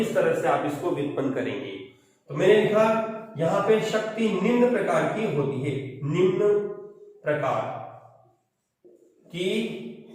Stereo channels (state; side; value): identical; both; correlation 1.00